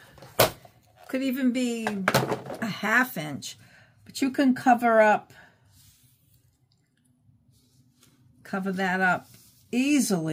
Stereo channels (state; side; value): identical; both; correlation 1.00